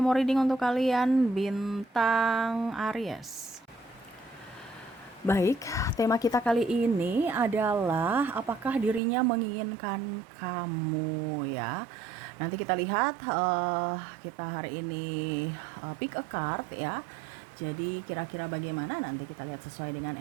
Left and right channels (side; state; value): left; drops out; at 9.0 s